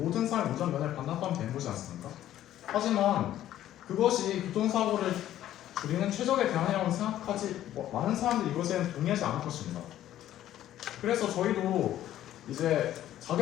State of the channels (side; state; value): right; quieter; 12.5 dB